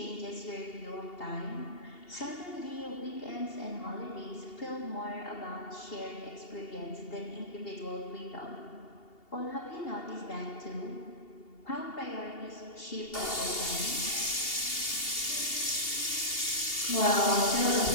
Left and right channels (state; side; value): late; right; 2.8 ms